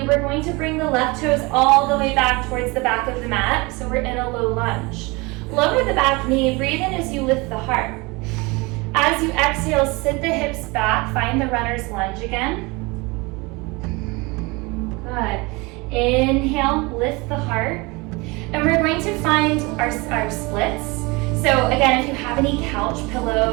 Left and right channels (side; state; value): left; quieter; 25.5 dB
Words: We're going to bring the left toes all the way back towards the back of the mat. So we're in a low lunge. Lower the back knee. Breathe in as you lift the heart. As you exhale, sit the hips back. Find the runner's lunge again. Good. Inhale, lift the heart. And we're going to find our splits. So again, if you have any couch